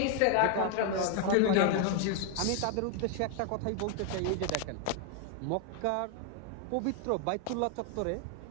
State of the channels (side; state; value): both; different; correlation 0.01